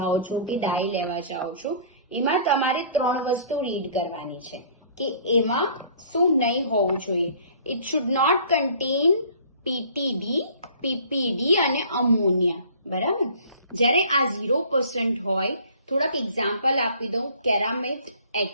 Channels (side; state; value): both; inverted; correlation -0.51